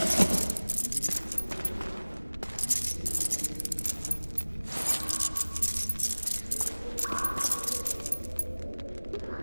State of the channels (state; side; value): inverted; both; correlation -1.00